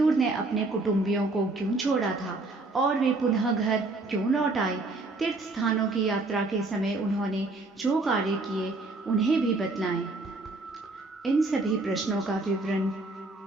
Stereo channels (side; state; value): left; quieter; 3.2 dB